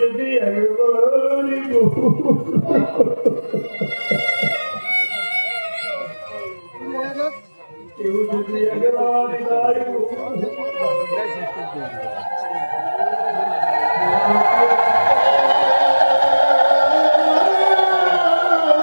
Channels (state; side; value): inverted; both; correlation -1.00